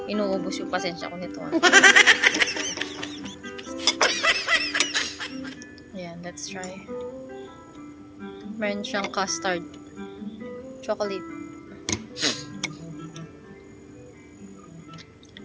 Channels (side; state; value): both; identical; correlation 1.00